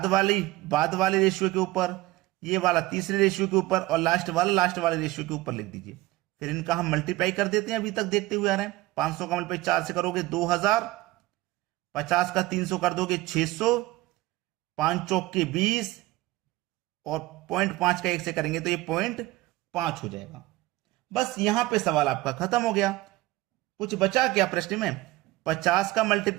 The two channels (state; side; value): quieter; left; 18.6 dB